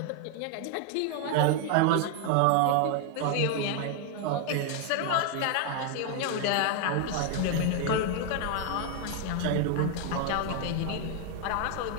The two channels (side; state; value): both; different; correlation 0.01